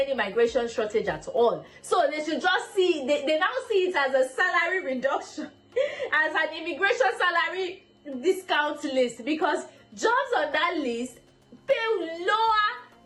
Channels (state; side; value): identical; both; correlation 1.00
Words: migration shortage at all. So they should just see, they now see it as a salary reduction, as an immigration salary discount list, because jobs on that list pay lower